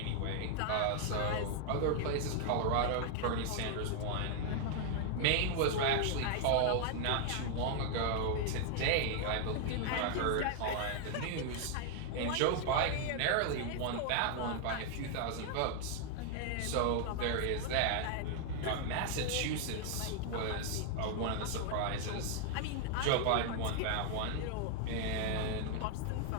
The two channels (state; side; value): different; both; correlation 0.00